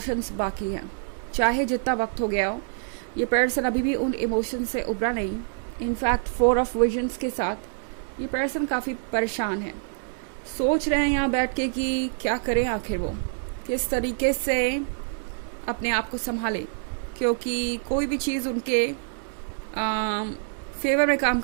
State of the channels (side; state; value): left; silent; digital silence